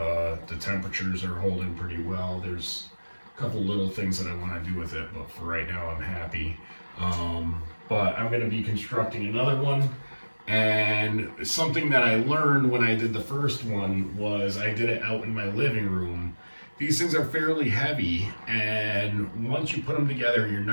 The temperatures are holding pretty well. There's a couple little things that I want to do with it, but for right now I'm happy. But I'm going to be constructing another one, and something that I learned when I did the first one was I did it out in my living room. These things are fairly heavy, and once you put them together, you're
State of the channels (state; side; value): inverted; both; correlation -1.00